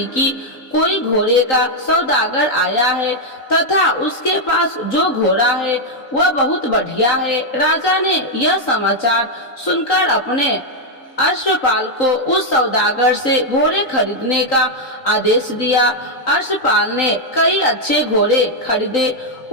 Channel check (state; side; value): late; right; 3.9 ms